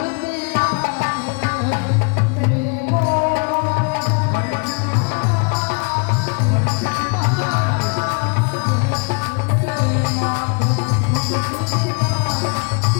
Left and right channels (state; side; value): quieter; right; 35.1 dB